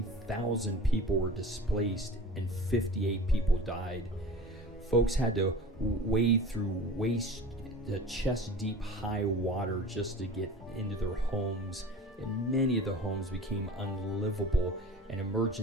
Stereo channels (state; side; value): normal; both; correlation 0.39